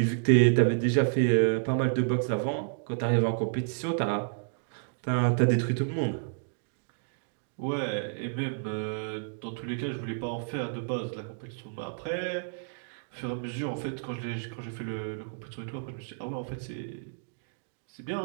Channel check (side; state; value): left; silent; digital silence